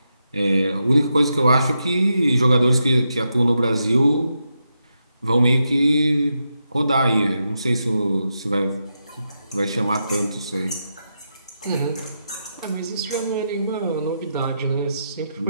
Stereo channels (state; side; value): inverted; both; correlation -0.85